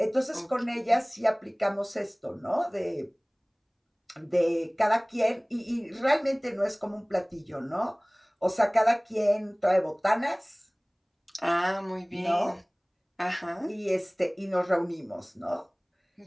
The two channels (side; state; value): both; identical; correlation 1.00